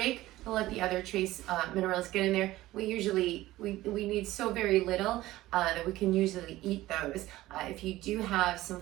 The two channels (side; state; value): left; quieter; 16.7 dB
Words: and let the other trace minerals get in there. We need so very little that we can usually eat those. If you do have some